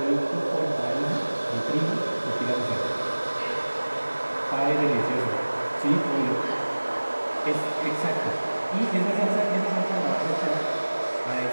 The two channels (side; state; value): both; inverted; correlation -1.00